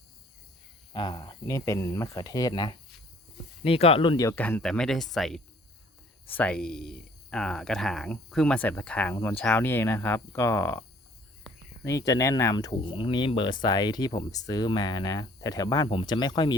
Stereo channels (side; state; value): both; normal; correlation 0.57